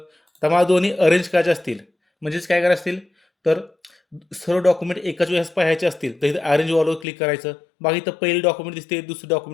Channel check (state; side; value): drops out; right; at 7.1 s